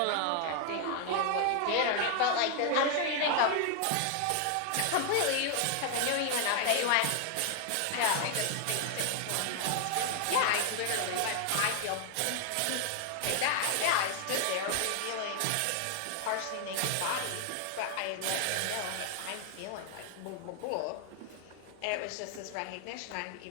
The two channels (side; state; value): both; different; correlation 0.00